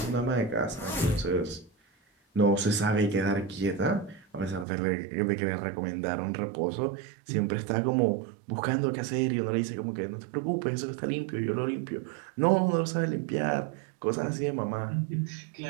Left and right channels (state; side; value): drops out; left; at 4.7 s